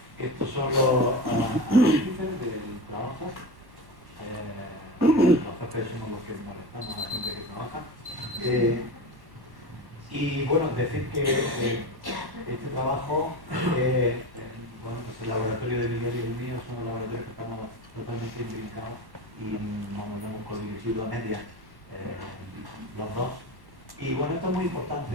Estos son los índices del trabajo. Los jefes somos los que molestamos a la gente que trabaja. Y bueno, decir que este trabajo, bueno, pues el laboratorio de Miguel y el mío son los laboratorios que estamos totalmente imbricados y vamos, lo hemos codirigido a medias los dos. Y bueno, esto es muy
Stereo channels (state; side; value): late; left; 1.1 ms